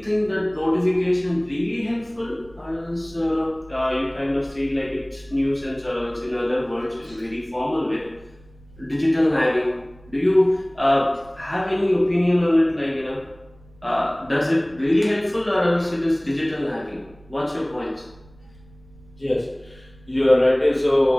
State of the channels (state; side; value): noise; right; rumble, 26 dB below the sound